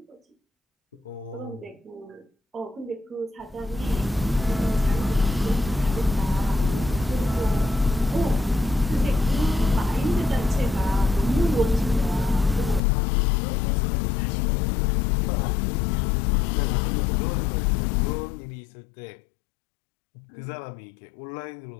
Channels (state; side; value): drops out; right; at 12.8 s